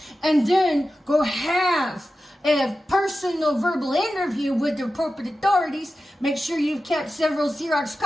and then go have a personal verbal interview with the appropriate authorities. Make sure you've kept several Xerox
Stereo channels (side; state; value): both; normal; correlation 0.93